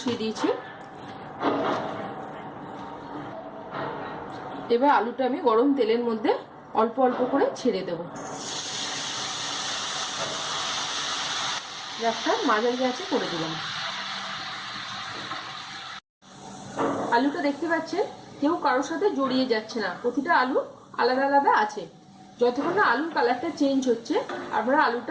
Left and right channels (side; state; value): both; identical; correlation 1.00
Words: দিয়েছি। এবার আলুটা আমি গরম তেলের মধ্যে অল্প অল্প করে ছেড়ে দেব। গ্যাসটা মাঝারি আঁচে করে দিলাম। আলুটা দেখতে পাচ্ছেন কেউ কারোর সাথে জড়িয়ে যাচ্ছে না, প্রতিটা আলু আলাদা আলাদা আছে। যতক্ষণ না আলুর কালারটা চেঞ্জ হচ্ছে আপনারা